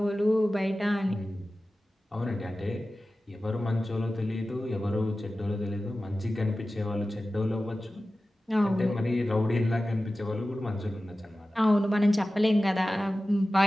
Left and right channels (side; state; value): both; normal; correlation 0.95